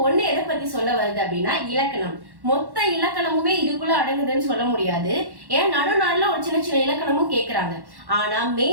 1 எதை பத்தி சொல்ல வருது அப்படின்னா இலக்கணம். மொத்த இலக்கணமுமே இதுக்குள்ள அடங்குதுன்னு சொல்ல முடியாது. ஏன்னா நடுநாள்ல ஒரு சின்ன சின்ன இலக்கணமும் கேட்கறாங்க. ஆனா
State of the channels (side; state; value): left; late; 1.1 ms